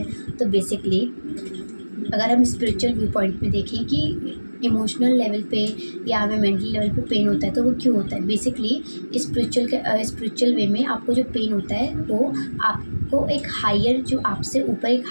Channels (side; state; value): both; inverted; correlation -1.00